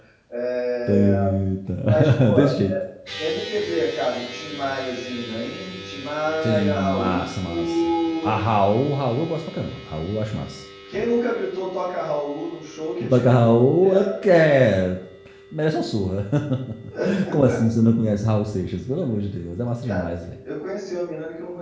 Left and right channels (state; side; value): identical; both; correlation 1.00